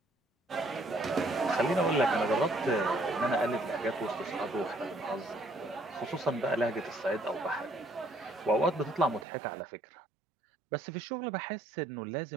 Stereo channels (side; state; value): left; drops out; at 9.2 s